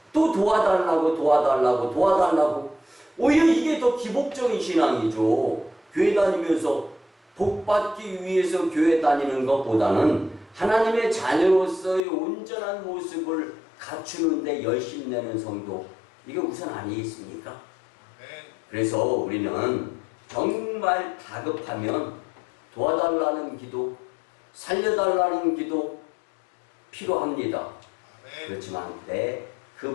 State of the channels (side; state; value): right; drops out; at 12.0 s